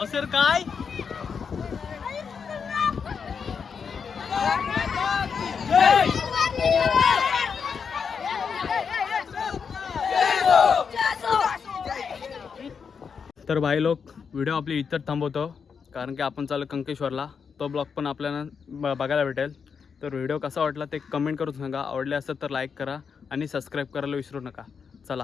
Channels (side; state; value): right; quieter; 6.2 dB